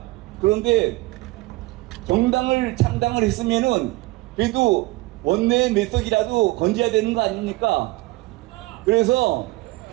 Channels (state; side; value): quieter; left; 20.9 dB